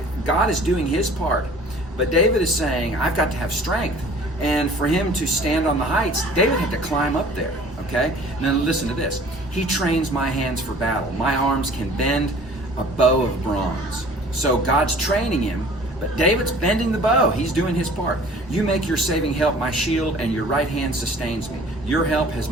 God is doing His part. But David is saying, I've got to have strength. And for him to stand on the heights, David had to climb up there. Okay? Now listen to this. He trains my hands for battle. My arms can bend a bow of bronze. So God's training him, but David's bending the bow. He's doing his part. You make your saving help my shield, and your right hand sustains me. Your help has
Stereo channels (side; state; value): both; normal; correlation 0.49